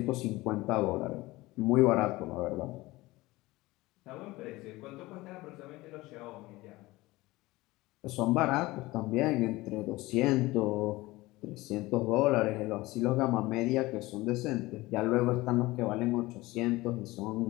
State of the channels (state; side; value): quieter; right; 19.9 dB